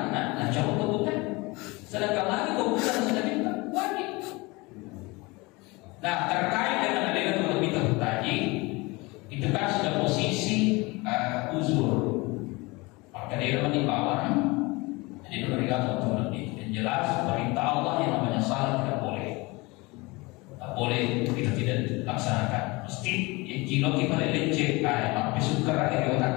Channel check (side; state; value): right; quieter; 24.4 dB